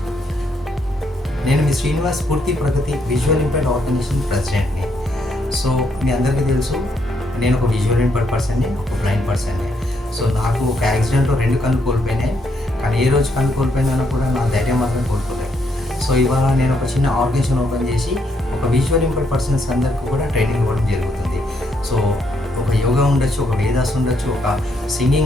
నేను మీ శ్రీనివాస్, పూర్తి ప్రగతి విజువల్ ఇంపైర్డ్ ఆర్గనైజేషన్ ప్రెసిడెంట్ని. సో మీ అందరికీ తెలుసు, నేను ఒక విజువల్ ఇంపైర్డ్ పర్సన్ని, ఒక బ్లైండ్ పర్సన్ని. సో నాకు ఒక యాక్సిడెంట్లో 2 కళ్ళు కోల్పోయినాయి. కానీ ఏ రోజు కళ్ళు కోల్పోయినా కూడా నా ధైర్యం మాత్రం కోల్పోలేదు. సో ఇవాళ నేను ఒక చిన్న ఆర్గనైజేషన్ ఓపెన్ చేసి ఒక విజువల్ ఇంపైర్డ్ పర్సన్స్ అందరికీ కూడా ట్రైనింగ్ ఇవ్వడం జరుగుతుంది. సో ఒక యోగా ఉండొచ్చు, ఒక వేదాస్ ఉండొచ్చు, ఒక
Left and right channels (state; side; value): normal; both; correlation 0.75